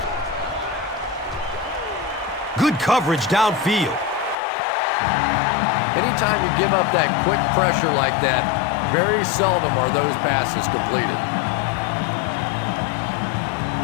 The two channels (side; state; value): right; drops out; at 4.4 s